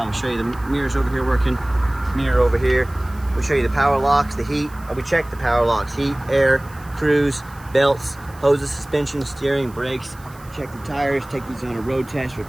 show you the mirrors over here working. Mirror over here. We'll show you the power locks, the heat. We check the power locks, heat, air, cruise, belts, hoses, suspension, steering, brakes. Check the tires, take these on a road test,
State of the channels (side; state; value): right; noise; hiss, 25 dB below the sound